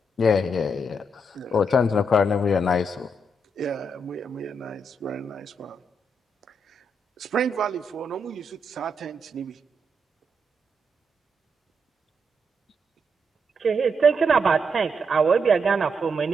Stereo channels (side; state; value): both; normal; correlation 0.80